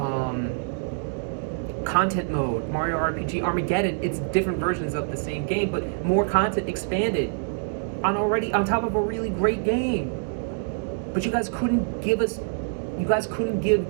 Content mode, Mario RPG Armageddon. It's different versions of the same game, but more content expanded on top of a really great game. But you guys couldn't give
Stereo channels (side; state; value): left; silent; 60 dB below the other